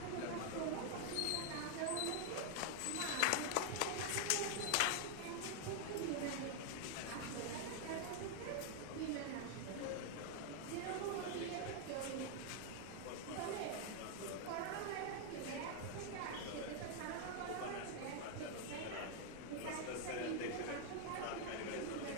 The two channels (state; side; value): different; both; correlation 0.00